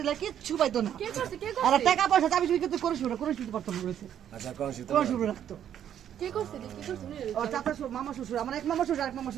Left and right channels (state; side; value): quieter; left; 10.0 dB